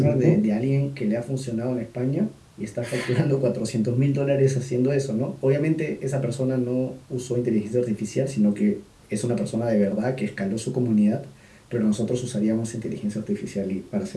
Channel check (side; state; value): both; identical; correlation 1.00